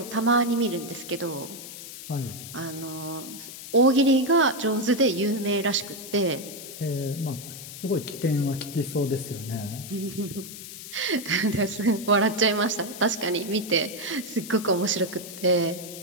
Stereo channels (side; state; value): left; noise; hiss, 12 dB below the sound